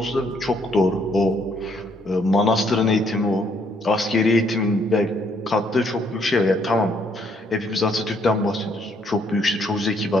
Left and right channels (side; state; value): both; normal; correlation 0.69